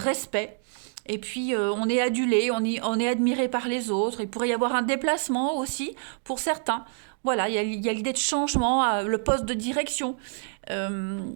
Et puis on est adulé, on est admiré par les autres. Il pourrait y avoir un déplacement aussi pour certains. Voilà, il y a l'idée de changement, le poste de direction,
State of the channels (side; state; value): left; silent; digital silence